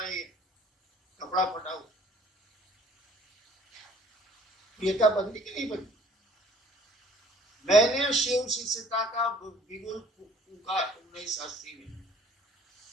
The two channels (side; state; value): both; normal; correlation 0.56